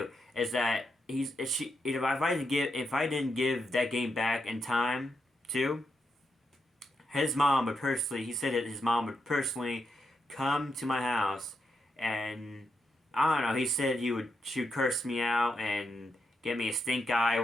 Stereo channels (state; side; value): normal; both; correlation 0.84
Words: is that if I didn't give that game back in time too, his mom would personally he said that his mom would personally come to my house and I don't know, he said she would curse me out and get me a stink eye or